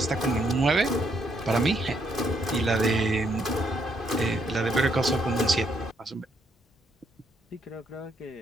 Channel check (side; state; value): both; normal; correlation 0.73